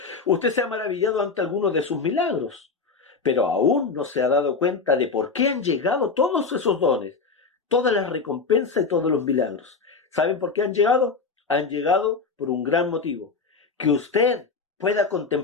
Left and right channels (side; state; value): right; quieter; 4.6 dB